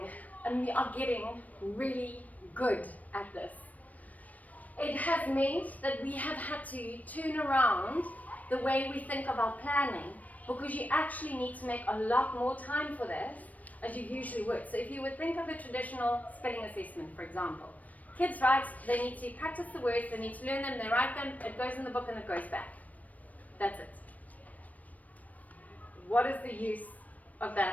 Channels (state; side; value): late; right; 0.073 ms